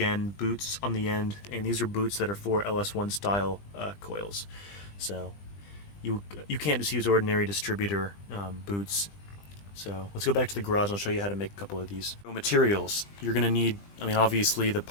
boots on the end, and these are boots that are for LS1 style coils. So you can't just use ordinary distributor boots. So let's go back to the garage and I'll show you how to make a couple of these. So materials. You're going to need, obviously the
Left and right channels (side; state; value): right; late; 20 ms